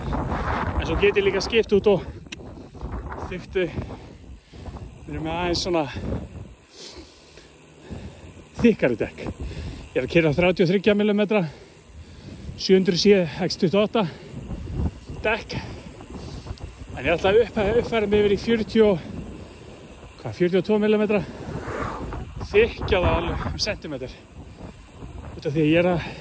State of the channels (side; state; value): both; identical; correlation 1.00